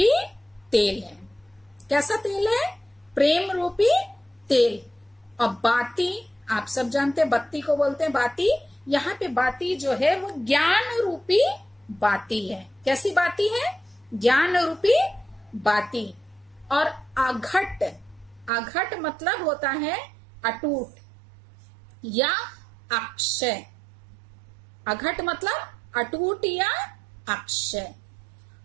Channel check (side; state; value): left; drops out; at 18.5 s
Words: तेल है। कैसा तेल है, प्रेम रूपी तेल। और बाती, आप सब जानते हैं बत्ती को बोलते हैं बाती। यहाँ पे बाती जो है वो ज्ञान रूपी बाती है। कैसी बाती है, ज्ञान रूपी बाती। और अघट, अघट मतलब होता है अटूट या अक्षय। अघट मतलब अटूट या अक्षय।